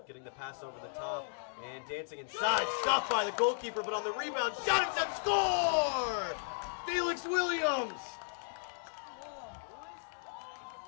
getting the pass over the top, and dancing inside. Stopped by the goalkeeper, but on the rebound, shot attempt, score! Felix Williams!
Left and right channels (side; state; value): right; silent; digital silence